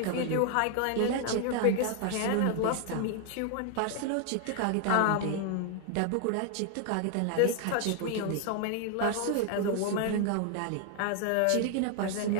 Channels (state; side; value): different; both; correlation 0.00